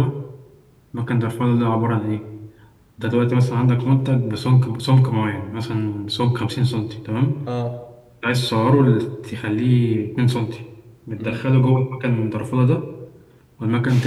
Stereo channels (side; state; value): both; identical; correlation 1.00